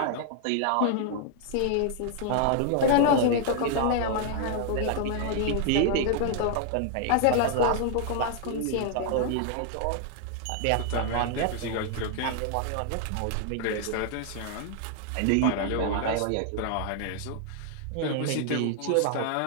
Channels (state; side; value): different; both; correlation -0.01